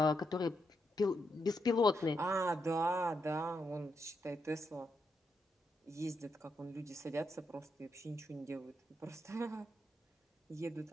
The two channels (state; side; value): normal; both; correlation 0.82